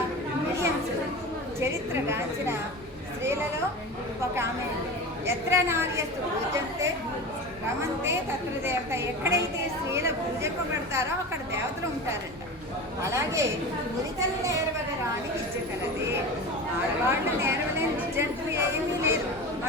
విలియమ్స్ చరిత్రగాంచిన స్త్రీలలో ఒక ఆమె. ఎత్ర నార్యస్తు పూజంతే రమంతే తత్ర దేవత. ఎక్కడైతే స్త్రీలు పూజింపబడతారో అక్కడ దేవతలు ఉంటారంట. అలాగే మురితలు నేర్వగరాని విద్య కలది. ఆడవాళ్ళు నేర్వలేని విద్య అంటూ ఏమీ లేదు.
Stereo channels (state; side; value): normal; both; correlation 0.30